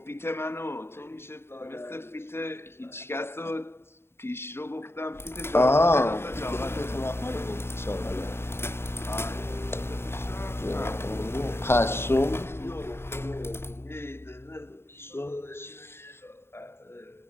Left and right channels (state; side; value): late; right; 0.12 ms